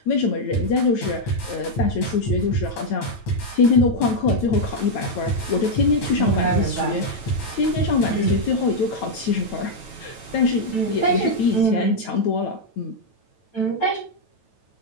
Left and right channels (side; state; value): right; late; 9.1 ms